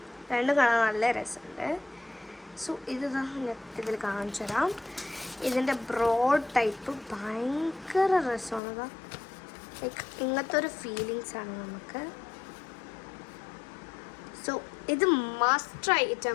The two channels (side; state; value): right; drops out; at 8.6 s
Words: രണ്ടും കാണാൻ നല്ല രസമുണ്ട്. സോ ഇത് ഇതിൽ കാണിച്ചു തരാം. ഇതിൻ്റെ ബ്രോഡ് ടൈപ്പ് ഭയങ്കര രസമാണ്. ലൈക്ക് ഇങ്ങനത്തെ ഒരു ഫീലിങ്സാണ് നമുക്ക്. സോ ഇത് മസ്റ്റ് ട്രൈ